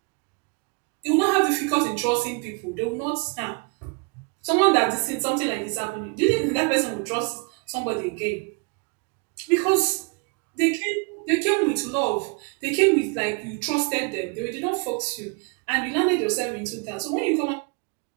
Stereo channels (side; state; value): left; quieter; 33.8 dB